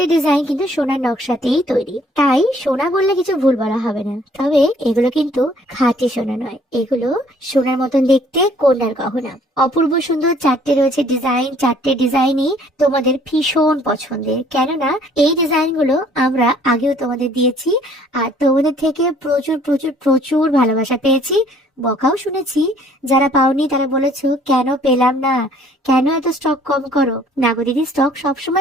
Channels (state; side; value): normal; both; correlation 0.59